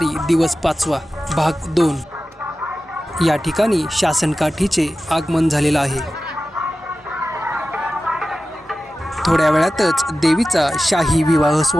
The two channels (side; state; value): both; normal; correlation 0.94